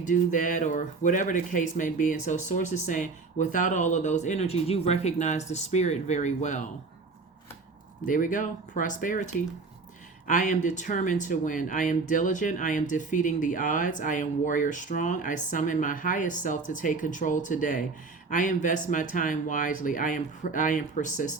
that, or whatever the case may be. And so Source is saying, without all of those energies, you recognize the spirit very well. There we go. Prosperity. I am determined to win. I am diligent. I am defeating the odds. I am warrior strong. I summon my highest self to take control today. I invest my time wisely. I am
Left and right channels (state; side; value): quieter; left; 4.2 dB